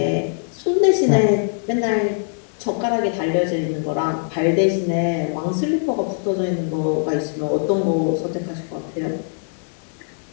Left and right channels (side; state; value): right; silent; digital silence